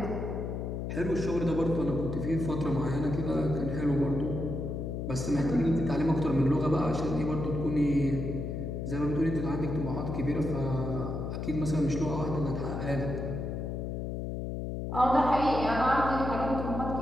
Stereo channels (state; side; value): noise; left; hum, 4 dB below the sound